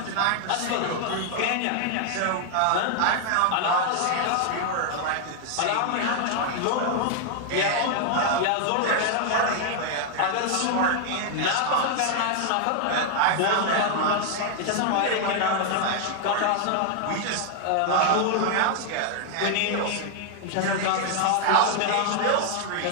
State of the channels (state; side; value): different; both; correlation 0.00